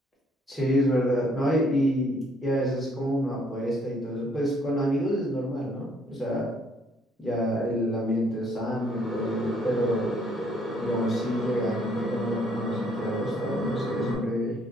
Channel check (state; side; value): normal; both; correlation 0.65